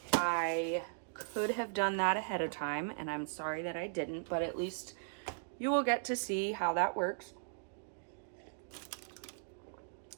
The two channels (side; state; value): left; silent; digital silence